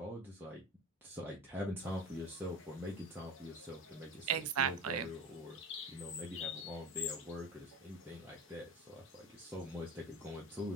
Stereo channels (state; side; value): normal; both; correlation 0.31